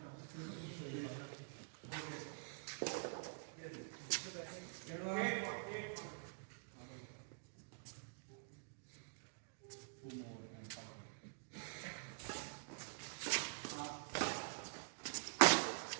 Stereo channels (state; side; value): silent; left; digital silence